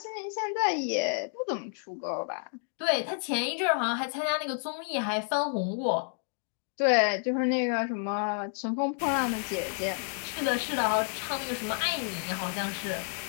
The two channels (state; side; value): silent; right; digital silence